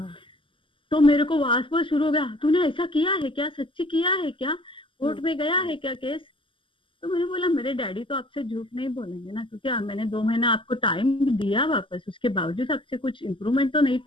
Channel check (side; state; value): right; late; 0.25 ms